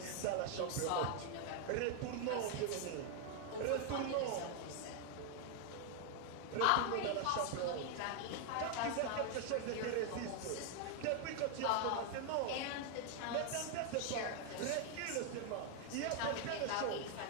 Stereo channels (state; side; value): different; both; correlation 0.00